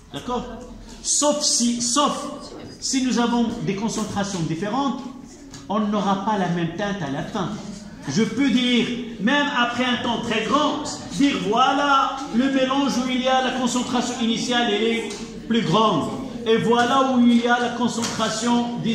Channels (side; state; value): both; identical; correlation 1.00